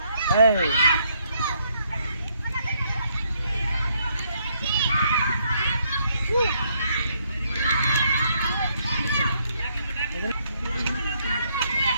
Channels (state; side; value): inverted; both; correlation -0.72